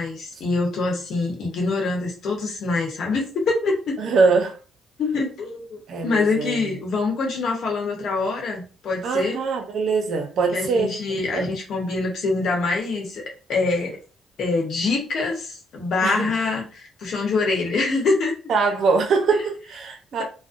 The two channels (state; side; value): normal; both; correlation 0.71